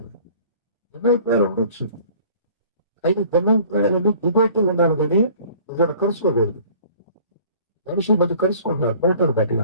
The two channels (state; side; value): inverted; both; correlation -0.51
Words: ఉండొచ్చు. అయితే భిన్నాభిప్రాయాలను డిబేట్లు ఉండాలి కానీ ఇక్కడ కలుసుకోకూడదు. మనుషుల మధ్య కలుసుకుంటారు, పోతారు